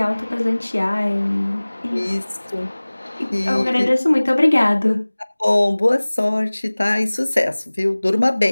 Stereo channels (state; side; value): inverted; both; correlation -1.00